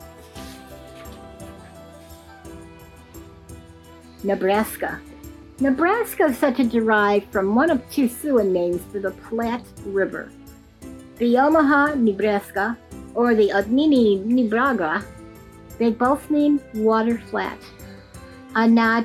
Nebraska. Nebraska is said to derive from one of two Siouan names for the Platte River. The Omaha, Nebraska, or the Odmini, Nebraga, they both mean water flat, a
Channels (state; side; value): identical; both; correlation 1.00